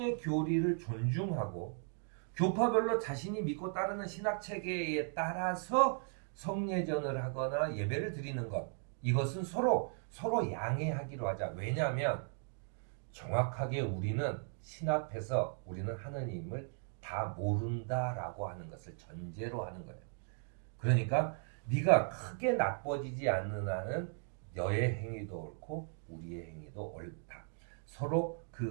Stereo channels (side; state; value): left; silent; 53 dB below the other